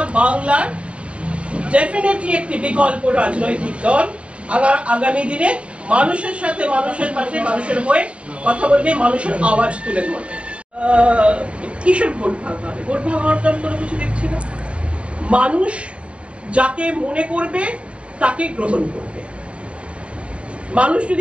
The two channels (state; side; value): late; left; 0.061 ms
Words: বাংলার ডেফিনেটলি একটি বিকল্প রাজনৈতিক দল। আগামী দিনে মানুষের সাথে, মানুষের পাশে, মানুষের হয়ে কথা বলবে, মানুষের আওয়াজ তুলে ধরবে। কিসের ভোট ভাগ হবে? ভোট ভাগ হওয়ার তো কোনো কিছু দেখছি না। মানুষ যাকে মনে করবে তাকে গ্রহণ করবে। মানুষ